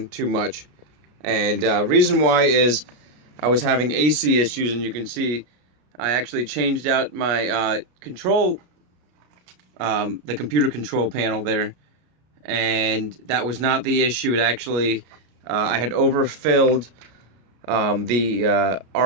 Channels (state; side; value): late; left; 33 ms